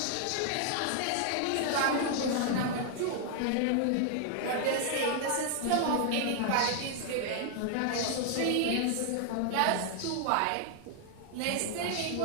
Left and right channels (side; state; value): both; different; correlation 0.00